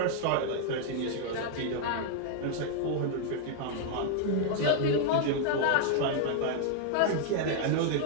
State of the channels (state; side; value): different; both; correlation -0.01